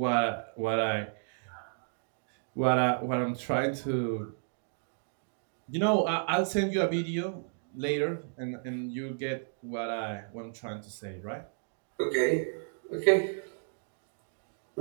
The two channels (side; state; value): left; silent; digital silence